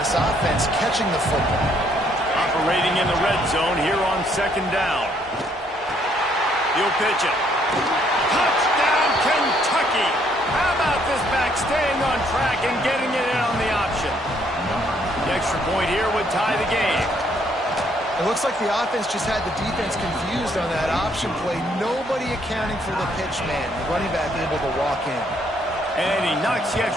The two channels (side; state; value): both; normal; correlation 0.68